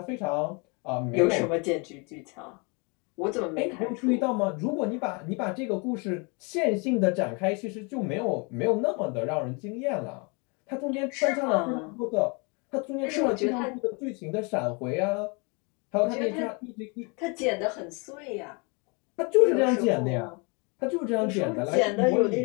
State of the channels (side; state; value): right; quieter; 31.8 dB